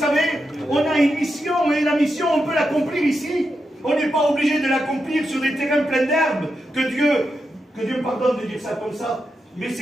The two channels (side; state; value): both; normal; correlation 0.87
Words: on a une mission, et la mission, on peut l'accomplir ici. On n'est pas obligé de l'accomplir sur des terrains pleins d'herbes. Que Dieu me pardonne de dire ça comme ça. Mais